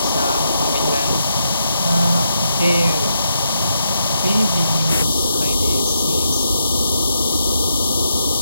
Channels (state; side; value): inverted; both; correlation -0.81